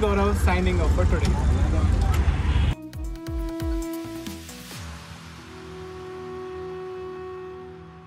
Gaurav signing off for today.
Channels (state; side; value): identical; both; correlation 1.00